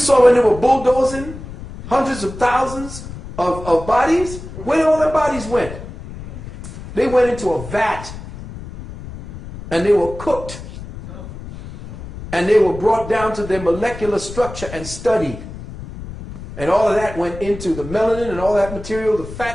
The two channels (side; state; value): left; noise; rumble, 12 dB below the sound